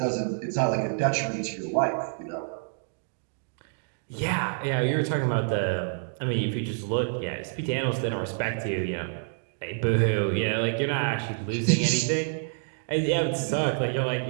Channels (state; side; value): silent; left; digital silence